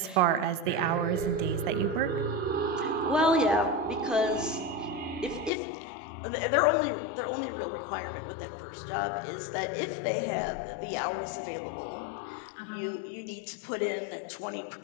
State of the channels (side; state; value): right; drops out; at 5.5 s